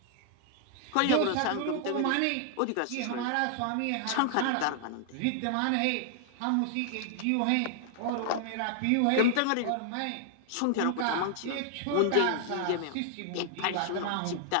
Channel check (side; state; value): both; different; correlation 0.00